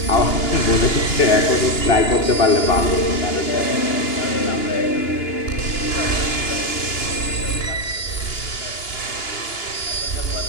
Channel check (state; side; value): late; right; 2.9 ms